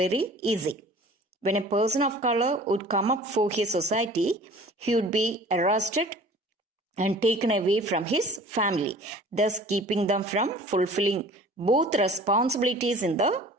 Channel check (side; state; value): both; normal; correlation 0.46